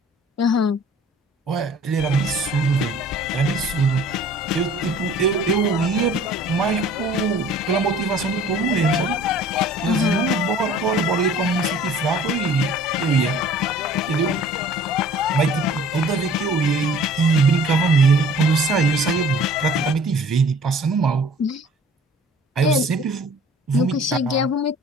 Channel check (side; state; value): both; normal; correlation 0.50